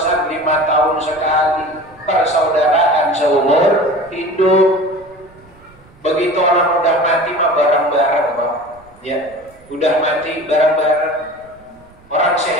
5 tahun sekali, persaudaraan seumur hidup. Begitu orang udah mati mah bareng-bareng Pak. Ya, udah mati bareng-bareng. Orang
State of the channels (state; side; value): noise; right; rumble, 28 dB below the sound